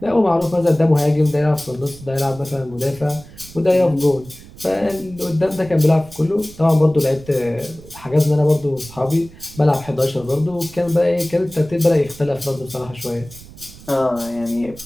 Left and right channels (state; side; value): noise; right; rumble, 19 dB below the sound